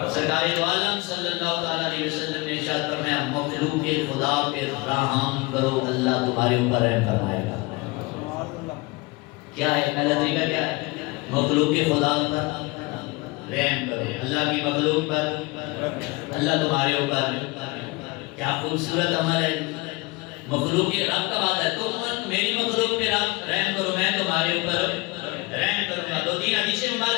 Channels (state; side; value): quieter; right; 24.1 dB